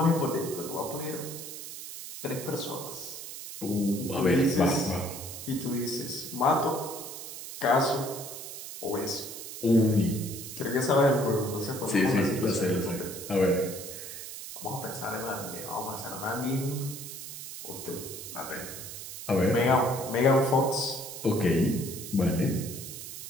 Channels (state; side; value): noise; right; hiss, 10 dB below the sound